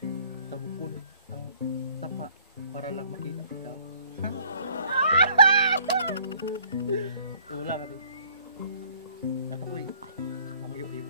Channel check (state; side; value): inverted; both; correlation -0.58